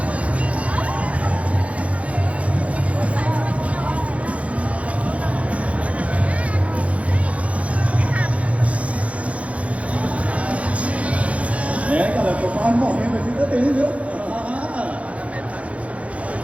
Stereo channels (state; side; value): late; left; 0.064 ms